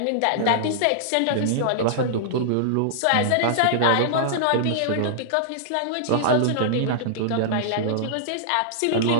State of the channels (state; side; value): different; both; correlation -0.01